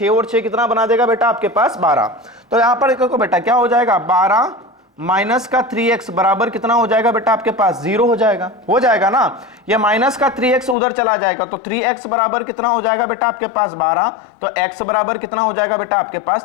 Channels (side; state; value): right; drops out; at 10.8 s